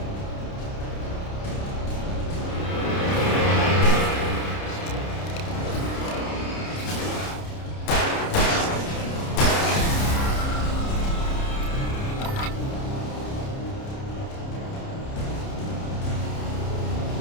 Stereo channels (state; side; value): late; right; 30 ms